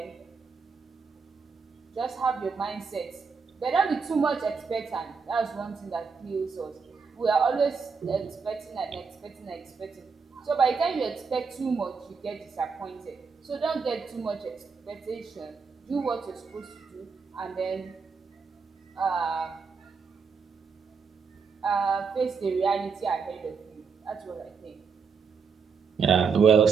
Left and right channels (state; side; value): quieter; left; 5.5 dB